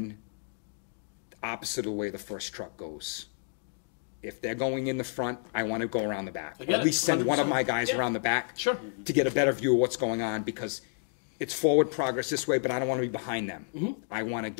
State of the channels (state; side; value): silent; right; digital silence